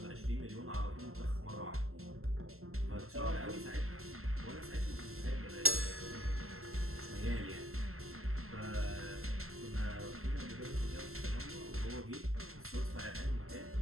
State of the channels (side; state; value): left; late; 0.62 ms